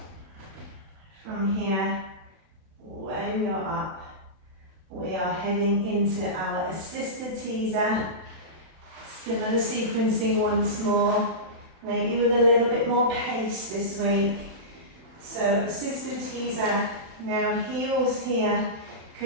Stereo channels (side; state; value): left; late; 31 ms